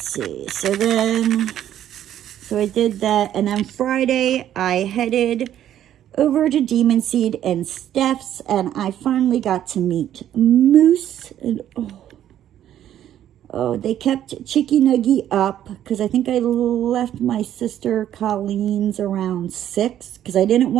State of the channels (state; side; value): quieter; left; 11.2 dB